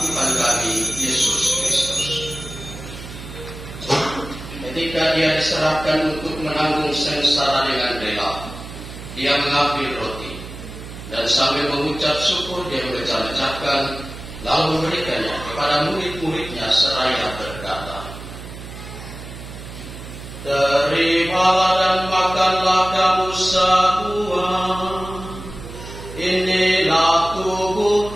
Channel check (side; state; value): right; noise; hum, 12 dB below the sound